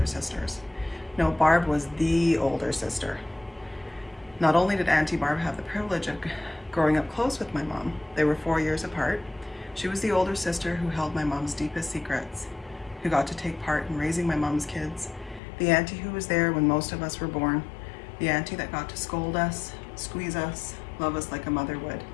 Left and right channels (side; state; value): right; drops out; at 15.4 s